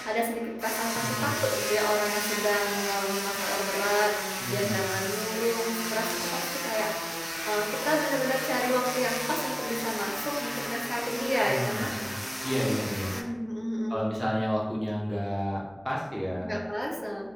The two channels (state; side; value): noise; left; hum, 27 dB below the sound